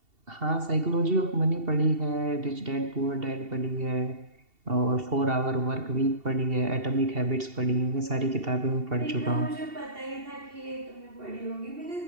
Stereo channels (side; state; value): left; late; 2.7 ms